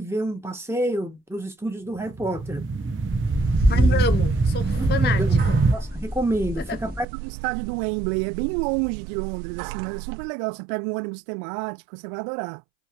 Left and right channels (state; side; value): drops out; left; at 7.1 s